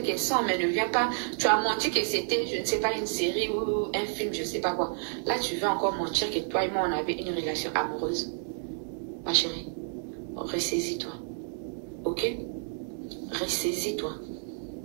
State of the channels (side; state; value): left; silent; 58 dB below the other